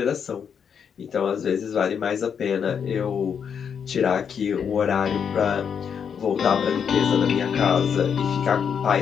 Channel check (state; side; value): quieter; right; 7.3 dB